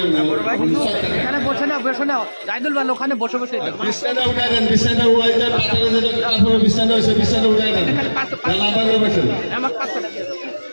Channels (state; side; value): inverted; both; correlation -1.00